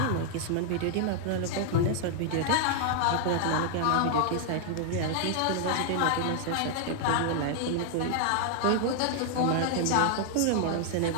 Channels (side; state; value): both; different; correlation 0.00